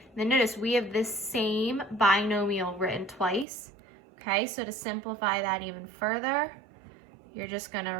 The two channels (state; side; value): drops out; left; at 3.5 s